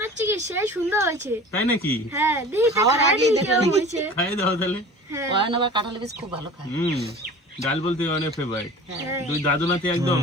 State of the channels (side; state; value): both; normal; correlation 0.40